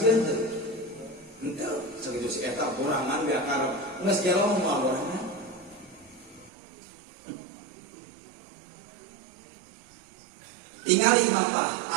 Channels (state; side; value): drops out; left; at 6.5 s